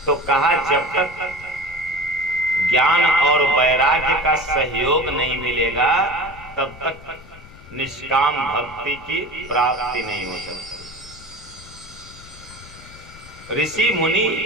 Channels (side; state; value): left; noise; rumble, 20 dB below the sound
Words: तो कहा जब तक ज्ञान और वैराग्य का सहयोग नहीं मिलेगा तब तक निष्काम भक्ति की प्राप्ति नहीं हो सकती। ऋषि मुनि